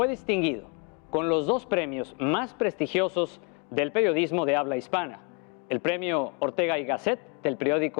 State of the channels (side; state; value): right; quieter; 34.9 dB